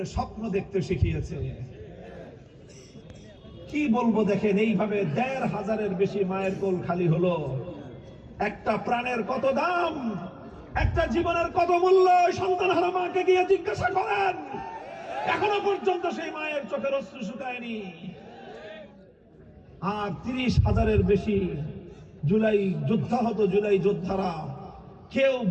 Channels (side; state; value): both; identical; correlation 1.00